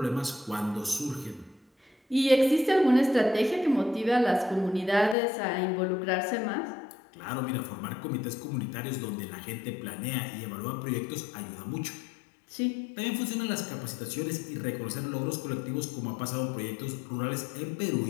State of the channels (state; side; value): drops out; right; at 5.2 s